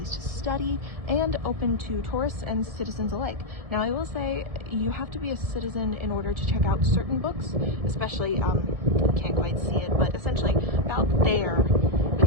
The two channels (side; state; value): left; late; 1.6 ms